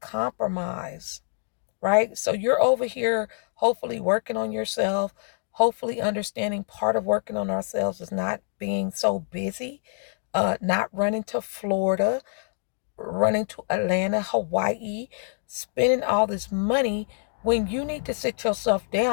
right? So you're over here hopefully working on yourself, hopefully understanding part of working on ourselves is not being so busy, not running to Florida, running to Atlanta, Hawaii, spending all this money when you need to sit yourself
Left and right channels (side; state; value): right; silent; digital silence